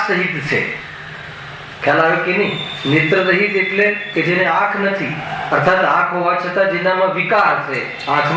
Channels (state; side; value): identical; both; correlation 1.00